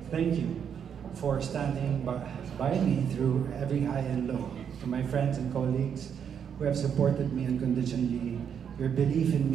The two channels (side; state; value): left; quieter; 7.9 dB